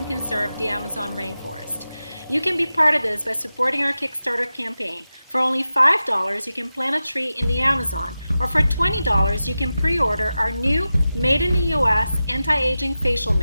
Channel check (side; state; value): both; inverted; correlation -0.93